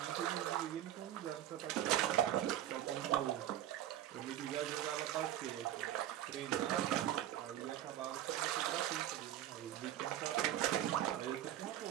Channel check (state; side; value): quieter; left; 12.2 dB